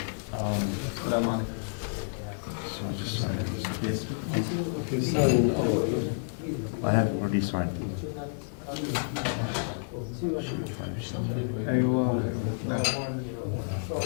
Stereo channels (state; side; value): silent; right; digital silence